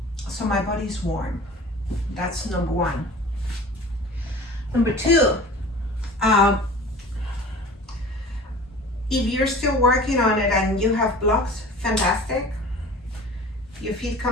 so my body's warm. That's number one. Number two, if you're still working on it and you have blocks, fantastic. Your feet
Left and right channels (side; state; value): both; normal; correlation 0.41